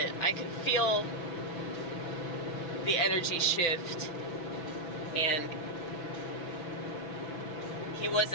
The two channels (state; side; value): late; right; 6.1 ms